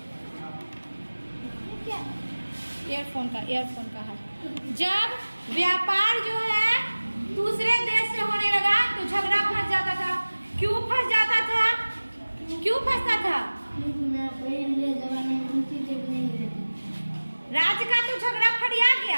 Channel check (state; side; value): inverted; both; correlation -1.00